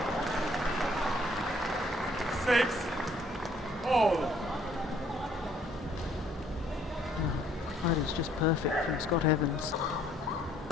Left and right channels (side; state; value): both; normal; correlation 0.63